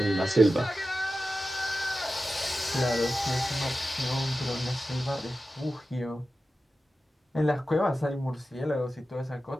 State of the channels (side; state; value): both; normal; correlation 0.93